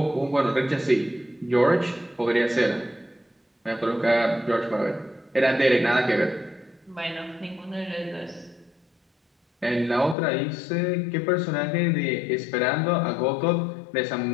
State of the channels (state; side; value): drops out; right; at 10.2 s